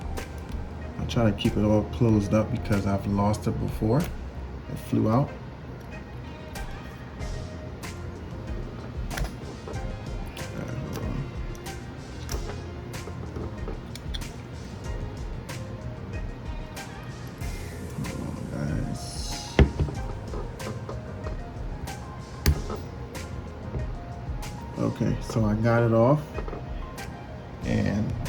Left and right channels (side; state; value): both; identical; correlation 1.00